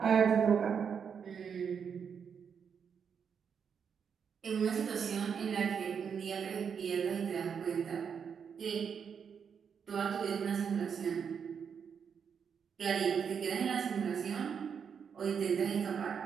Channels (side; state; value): left; quieter; 7.0 dB